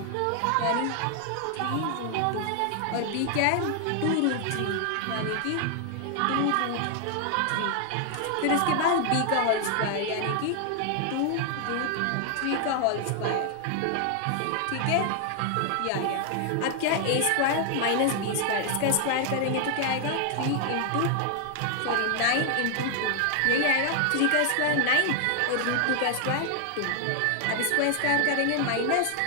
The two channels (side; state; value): both; different; correlation 0.00